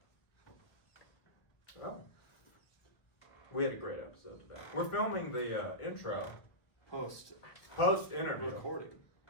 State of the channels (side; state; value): right; late; 1.5 ms